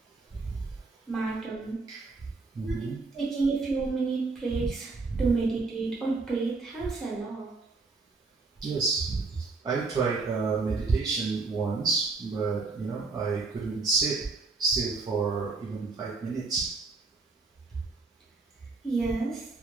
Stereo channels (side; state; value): left; quieter; 3.9 dB